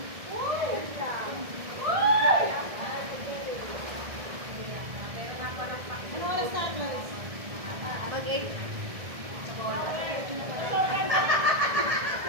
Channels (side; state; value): left; late; 1.7 ms